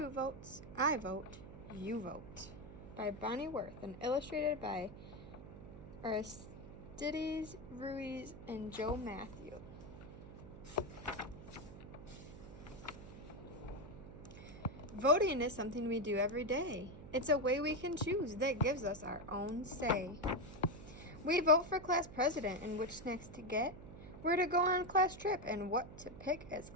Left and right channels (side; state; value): right; noise; hum, 14 dB below the sound